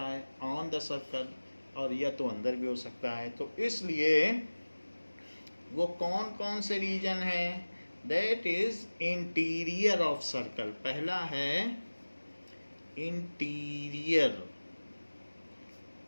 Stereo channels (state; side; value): inverted; both; correlation -1.00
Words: है ऑन द सर्कल, और या तो अंदर भी हो सकता है। तो इसलिए वो कौन कौन से रीजन हैं? That is interior of circle. पहला है इंटीरियर